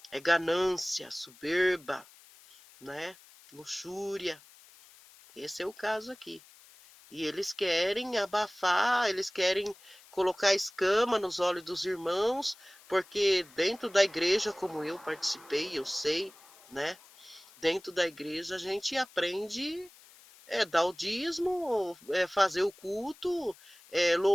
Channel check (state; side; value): noise; left; hiss, 24 dB below the sound